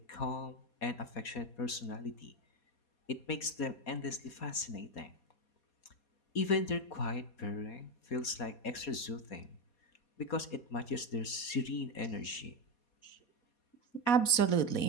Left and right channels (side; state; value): right; late; 4.2 ms